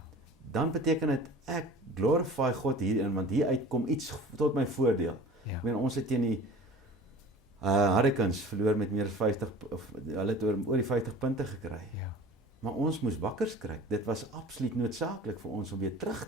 dan beteken dit ek glorify God hierin, want hieruit kom iets tot my voordeel. Ja. Ek meen ons het teen die Hurricanes verloor met meer as 50 of hulle het oor die 50 punte gekry. Ja. Maar ons moes wakker skrik. Dit was absoluut noodsaaklik vir ons om weer terug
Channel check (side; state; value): both; normal; correlation 0.42